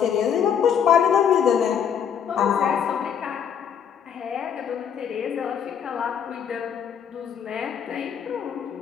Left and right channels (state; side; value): quieter; right; 8.0 dB